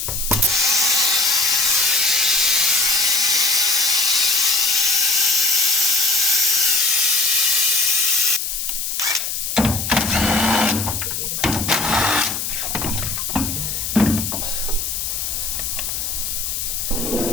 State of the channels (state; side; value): noise; left; hiss, 3 dB below the sound